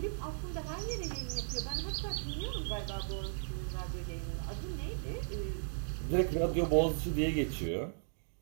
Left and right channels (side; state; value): left; silent; digital silence